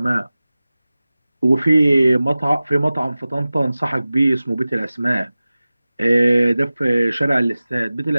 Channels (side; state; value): both; inverted; correlation -0.97